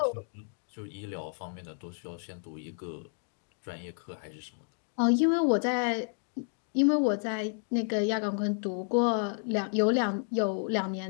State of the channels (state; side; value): silent; right; 57 dB below the other